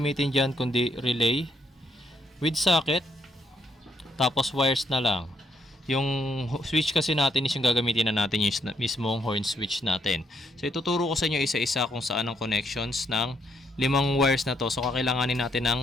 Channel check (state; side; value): normal; both; correlation 0.74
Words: dyan kundi relay with socket, tapos wires na lang. Yung switch kasi natin is yung gagamitin na natin yung mismong horn switch natin. So ituturo ko sa inyo isa-isa kung saan ang connections ng 5 wires na to. So kakailanganin natin ng